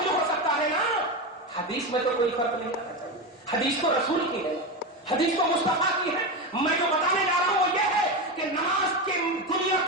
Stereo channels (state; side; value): normal; both; correlation 0.16